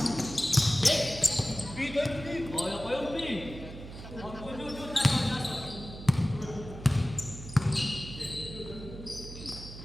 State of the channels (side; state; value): right; noise; hum, 12 dB below the sound